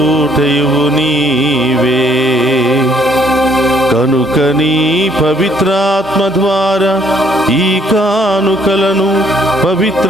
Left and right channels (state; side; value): normal; both; correlation 0.65